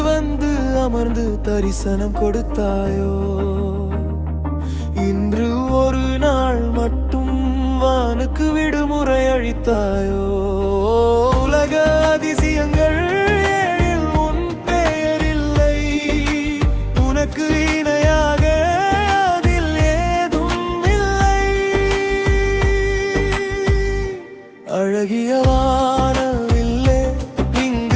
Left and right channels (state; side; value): identical; both; correlation 1.00